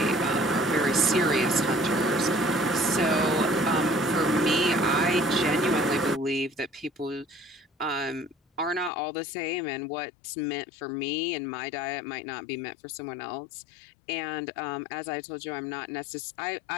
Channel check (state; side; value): drops out; right; at 8.9 s